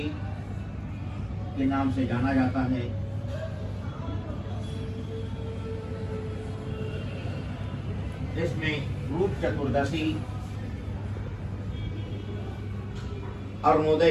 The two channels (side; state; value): both; identical; correlation 1.00